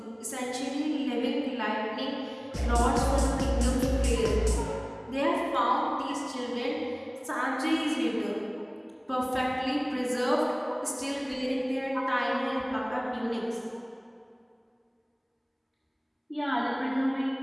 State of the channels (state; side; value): identical; both; correlation 1.00